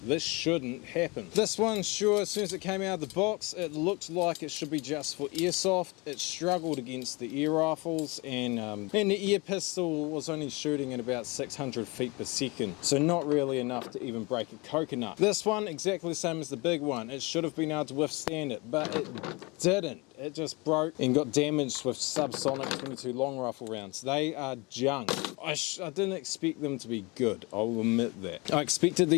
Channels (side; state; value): right; quieter; 26.6 dB